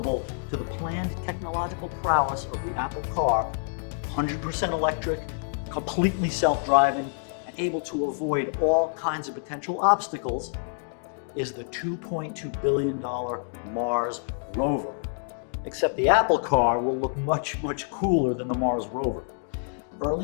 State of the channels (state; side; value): silent; right; digital silence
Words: to the planned technological prowess of the Apple car, 100% electric, completely self-driving, and able to avoid all kinds of potential obstacles, is the $2.2 billion Mars rover. Except the Apple car will look much, much cooler than the Mars rover.